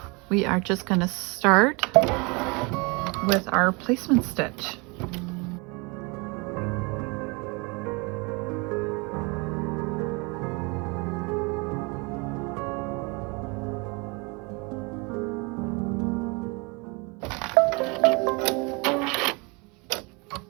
we are just going to start with our placement stitch.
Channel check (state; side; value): quieter; left; 29.1 dB